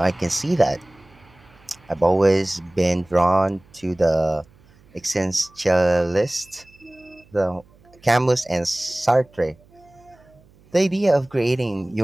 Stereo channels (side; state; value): right; noise; hum, 29 dB below the sound